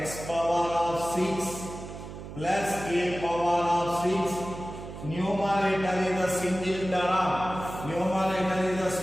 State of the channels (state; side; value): noise; right; hum, 11 dB below the sound